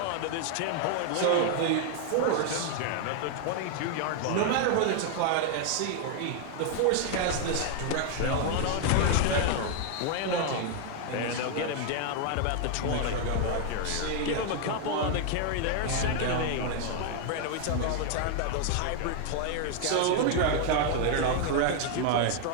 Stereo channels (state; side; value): different; both; correlation 0.00